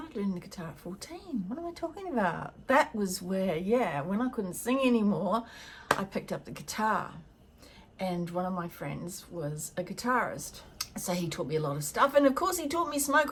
learning the guitar at 14. What am I talking about? That was where, yeah, when I couldn't sing anymore, I picked up the guitar. And one of my friends was a guitarist. So he taught me a lot of stuff. And of course he taught me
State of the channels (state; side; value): identical; both; correlation 1.00